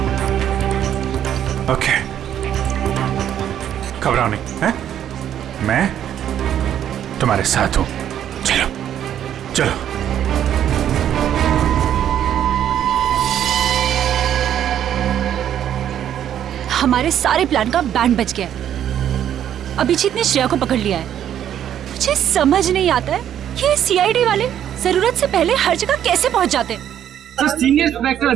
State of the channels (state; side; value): quieter; left; 10.3 dB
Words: ओके, घबराओ नहीं, हैं? मैं तुम्हारे साथ हूं। चलो चलो। हमारे सारे प्लान का बैंड बज गया है। अभिजीत ने श्रेया को पकड़ लिया है। मुझे समझ नहीं आता है कि ये सीआईडी वाले जरूरत से पहले हर जगह कैसे पहुंच जाते हैं। सर, सीनियर इंस्पेक्टर